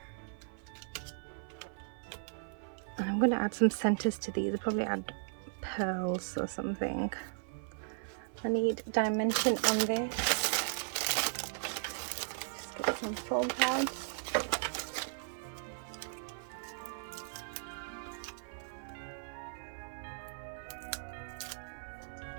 And I'm going to add some centers to these. I'll probably add pearls or something. I need dimension on this. Just get some foam pads.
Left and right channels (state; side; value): silent; left; 53 dB below the other